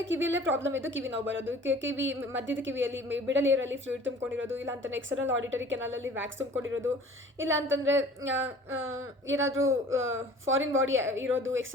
ಕಿವಿಯಲ್ಲೇ ಪ್ರಾಬ್ಲಮ್ ಇದ್ದು ಕಿವಿ ನೋವು ಬರೋದು, ಕಿವಿ ಮಧ್ಯದ ಕಿವಿಯಲ್ಲಿ ಮಿಡಲ್ ಇಯರಲ್ಲಿ ಫ್ಲೂಯಿಡ್ ತುಂಬಿಕೊಂಡಿರೋದು, ಇಲ್ಲ ಅಂತಂದರೆ ಎಕ್ಸ್ಟರ್ನಲ್ ಆಡಿಟರಿ ಕೆನಾಲಲ್ಲಿ ವ್ಯಾಕ್ಸ್ ತುಂಬಿಕೊಂಡಿರೋದು, ಇಲ್ಲ ಅಂತಂದರೆ ಏನಾದರೂ ಫಾರಿನ್ ಬಾಡಿ ಇರೋದು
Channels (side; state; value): both; normal; correlation 0.47